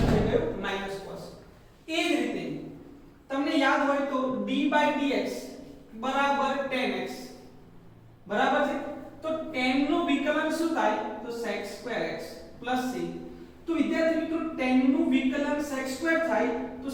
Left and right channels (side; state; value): both; identical; correlation 1.00